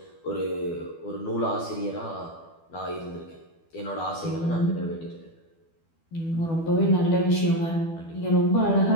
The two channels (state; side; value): late; right; 12 ms